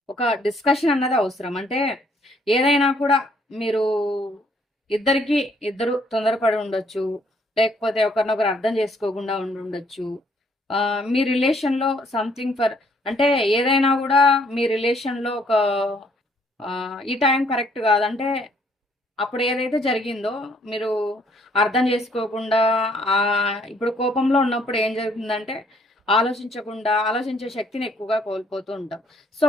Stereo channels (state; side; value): normal; both; correlation 0.66